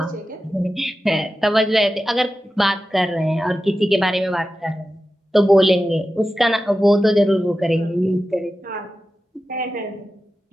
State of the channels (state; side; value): normal; both; correlation 0.93